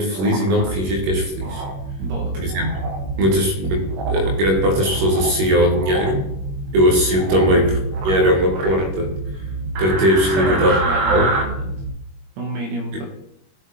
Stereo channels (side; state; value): left; late; 21 ms